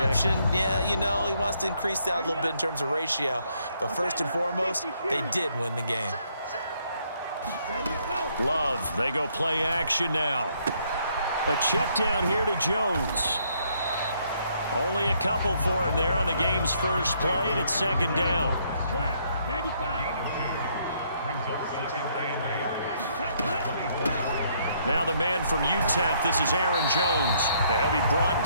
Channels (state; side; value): inverted; both; correlation -0.69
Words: Yeah, you know, he wants to increase that a little bit in terms of ratio. But first and foremost, they did win the game. Love, they go play action now. A check down here to Jones. Only a couple for him there on the game's first play, and it's second down. Now the man from UTEP, this is Aaron Jones. He'll be brought